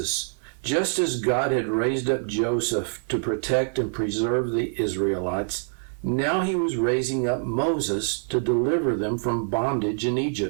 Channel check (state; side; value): silent; left; digital silence